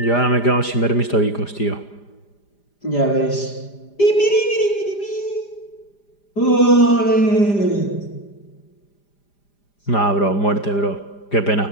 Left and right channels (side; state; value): right; late; 5.0 ms